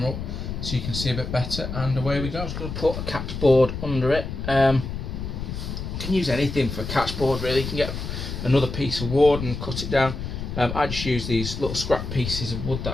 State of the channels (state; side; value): noise; left; rumble, 6 dB below the sound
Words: up so you can see a bit better, and away we go. I'm just going to put a catch board under it. You can use anything for a catch board really. You can get another piece of wood and cut it down. I just use these little scrap pieces of wood that